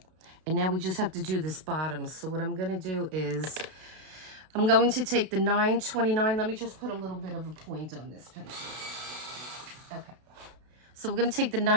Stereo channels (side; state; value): left; late; 33 ms